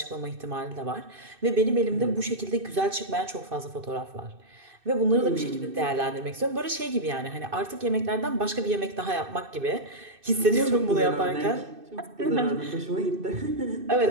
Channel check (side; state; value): left; late; 2.6 ms